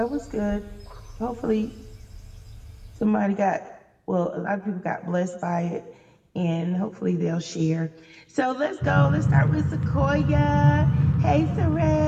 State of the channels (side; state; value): both; identical; correlation 1.00